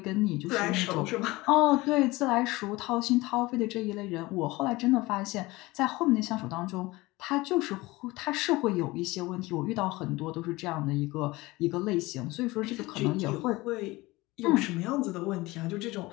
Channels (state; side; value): quieter; right; 20.8 dB